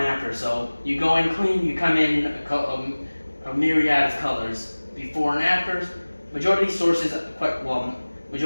So you go in clean, you come in a myriad of colors. Before and afters. Majority of these sources,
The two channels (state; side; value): inverted; both; correlation -1.00